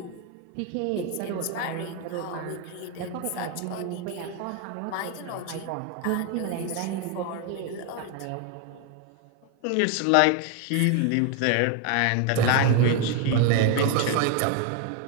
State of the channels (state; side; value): different; both; correlation 0.01